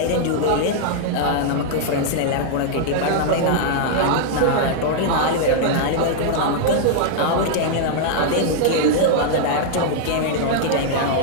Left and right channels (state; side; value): different; both; correlation -0.01